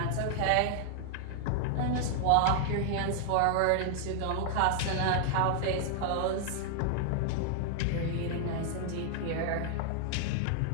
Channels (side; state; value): both; different; correlation 0.00